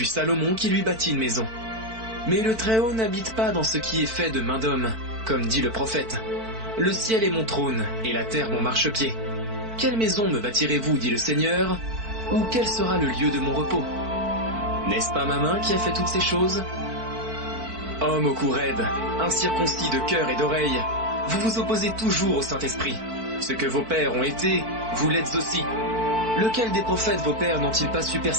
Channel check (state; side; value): late; left; 4.5 ms